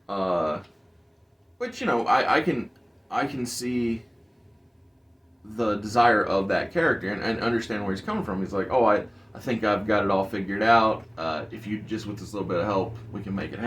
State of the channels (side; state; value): both; identical; correlation 1.00